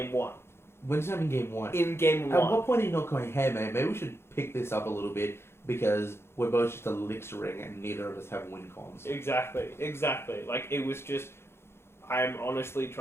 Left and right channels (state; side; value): late; right; 0.12 ms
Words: 1. When's that in game 1? In game 1. At what point are you not going, hey mate, maybe we should pick this up a little bit because we're both just elixiring and neither of us have win cons. Exactly. It was just, I'm honestly